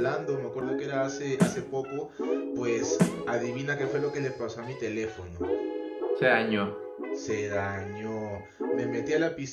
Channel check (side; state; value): both; identical; correlation 1.00